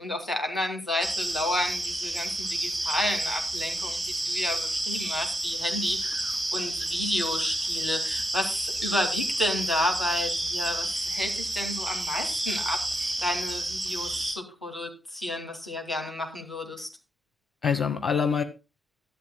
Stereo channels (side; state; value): both; normal; correlation 0.82